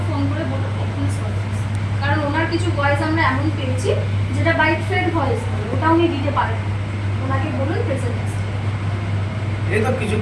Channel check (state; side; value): identical; both; correlation 1.00